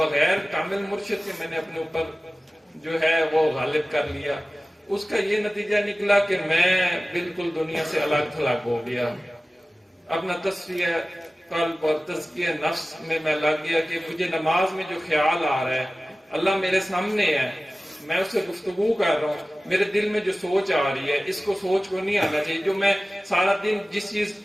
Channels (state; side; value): normal; both; correlation 0.97